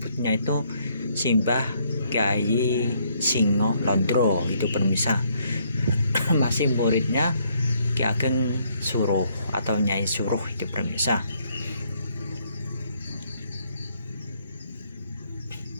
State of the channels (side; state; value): both; inverted; correlation -0.69